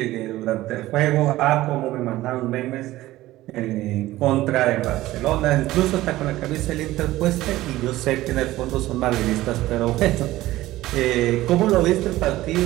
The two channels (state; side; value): quieter; left; 16.4 dB